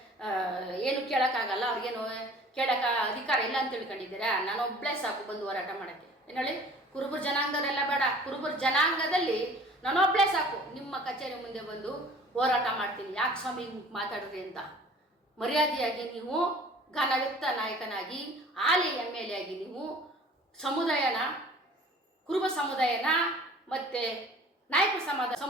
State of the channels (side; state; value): both; normal; correlation 0.48